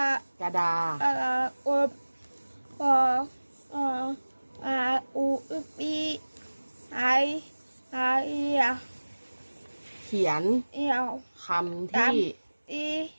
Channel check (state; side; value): inverted; both; correlation -1.00